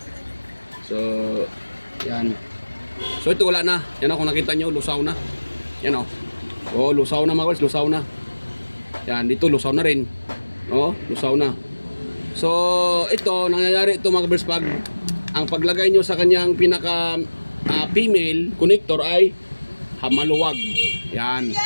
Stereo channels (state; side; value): inverted; both; correlation -1.00